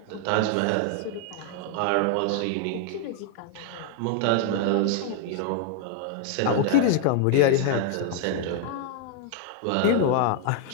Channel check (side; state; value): both; different; correlation 0.00